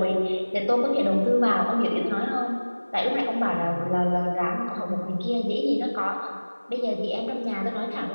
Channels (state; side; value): inverted; both; correlation -1.00